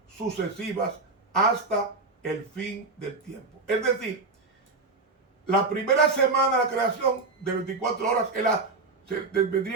sucesivas hasta el fin del tiempo. Es decir, la primera semana de la creación de 24 horas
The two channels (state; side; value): quieter; left; 3.8 dB